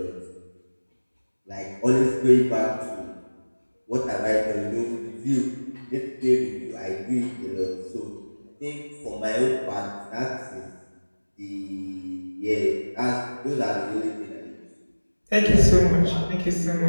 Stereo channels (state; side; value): inverted; both; correlation -1.00